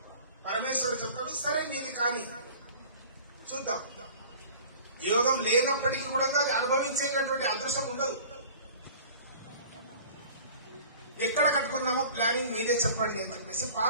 పరమేశ్వరుడు చెప్తాడు, సరే నీది కానీ చూద్దాం. యోగం లేనప్పటికీ కూడా అది అనుభవించేటటువంటి అదృష్టం ఉండదు. ఎక్కడ కట్టుకుందామో ప్లానింగ్ మీరే చెప్పండి అని చెప్పేసి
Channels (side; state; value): both; inverted; correlation -0.45